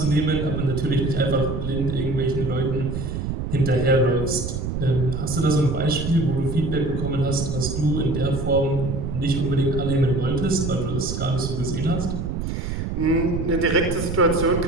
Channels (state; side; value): noise; right; rumble, 4 dB below the sound